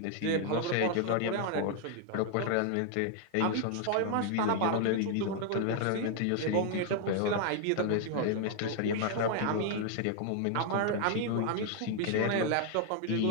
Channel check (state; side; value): different; both; correlation 0.00